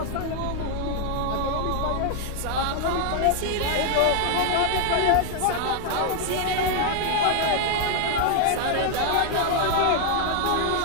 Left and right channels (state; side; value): different; both; correlation 0.00